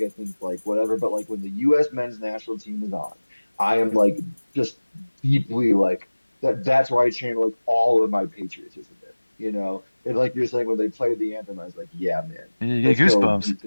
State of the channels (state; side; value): inverted; both; correlation -1.00